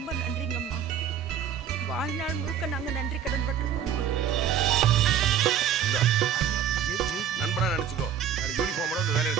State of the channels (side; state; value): left; quieter; 8.7 dB